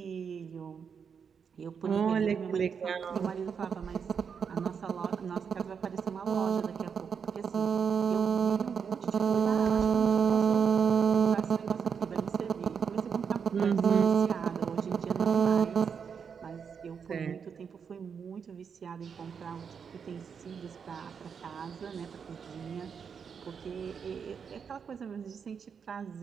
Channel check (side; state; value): left; quieter; 6.6 dB